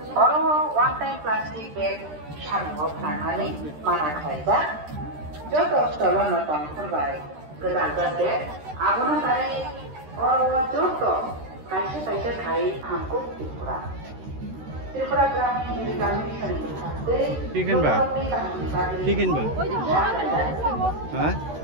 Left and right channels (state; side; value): late; left; 13 ms